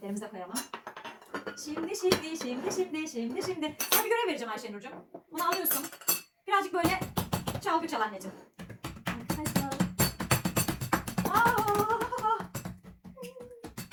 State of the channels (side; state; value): both; identical; correlation 1.00